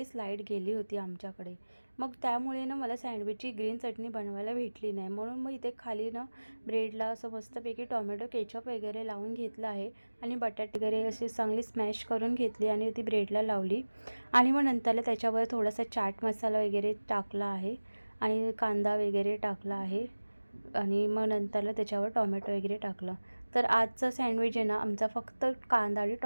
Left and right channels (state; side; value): inverted; both; correlation -1.00